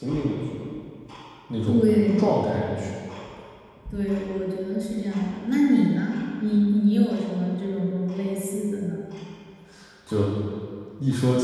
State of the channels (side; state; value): both; identical; correlation 1.00